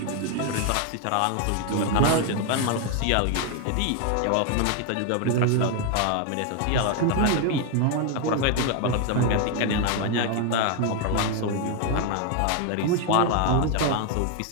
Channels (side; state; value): both; different; correlation 0.01